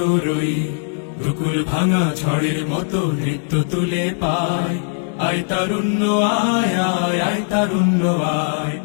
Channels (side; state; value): right; silent; digital silence